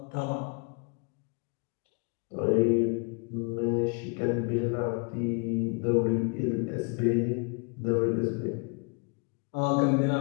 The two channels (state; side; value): quieter; right; 35.5 dB